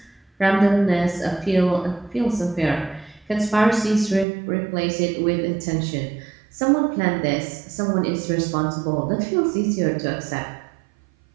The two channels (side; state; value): left; drops out; at 4.2 s